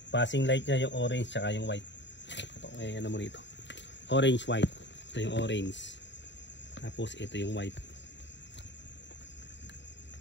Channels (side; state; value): right; late; 0.52 ms